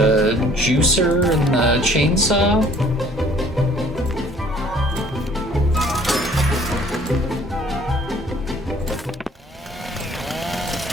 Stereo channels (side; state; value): both; normal; correlation 0.56